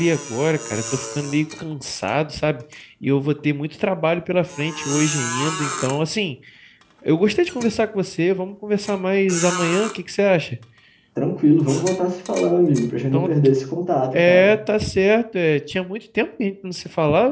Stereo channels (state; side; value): identical; both; correlation 1.00